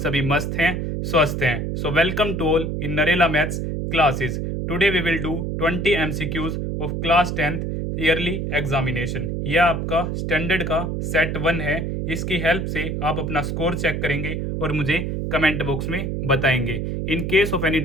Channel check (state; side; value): noise; right; hum, 2 dB below the sound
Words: मस्त हैं, स्वस्थ हैं। So welcome to all in Narela maths classes. Today we will do 20 MCQs of class 10th yearly examination. यह आपका स्टैंडर्ड का सेट 1 है। इसकी हेल्प से आप अपना स्कोर चेक करेंगे और मुझे कमेंट बॉक्स में बताएंगे। In case of any